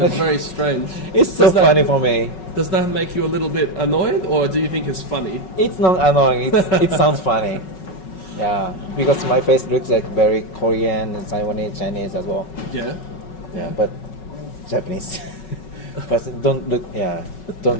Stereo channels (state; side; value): late; right; 5.4 ms